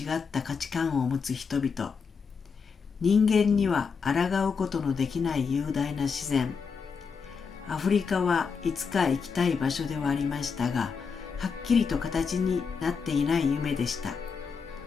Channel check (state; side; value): quieter; right; 5.7 dB